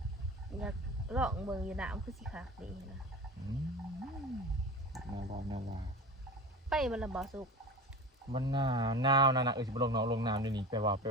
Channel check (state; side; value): normal; both; correlation 0.32